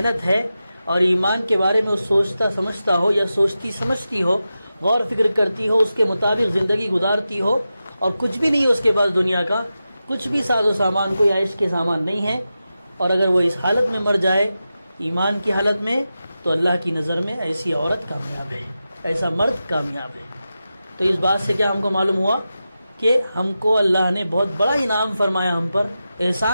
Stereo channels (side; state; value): both; inverted; correlation -0.92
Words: ہے اور ایمان کے بارے میں وہ سوچتا سمجھتا ہو یا سوچتی سمجھتی ہو، غور فکر کرتی ہو، اس کے مطابق زندگی گزارتی ہو، اور کچھ بھی نہیں ہے اس کے پاس دنیا کا، کچھ بھی ساز و سامان کوئی عیش کے سامان نہیں ہے، اور اگر وہ اس حالت میں مر جائے ایمان کی حالت میں، تو اللہ کی نظر میں ایسی عورت کامیاب ہے، ایسا مرد کامیاب ہے۔ تو اس بات سے کیا ہم کو معلوم ہوا کہ ہم کو اللہ نے بہت بڑا انعام فرمایا، ہم پر